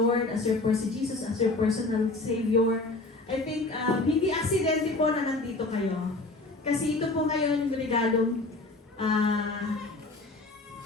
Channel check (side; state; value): right; quieter; 3.1 dB